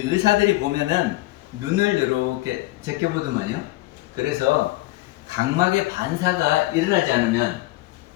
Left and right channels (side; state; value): right; quieter; 18.7 dB